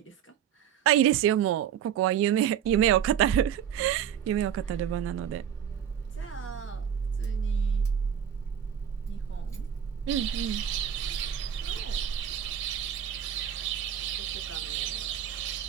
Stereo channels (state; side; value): quieter; left; 9.2 dB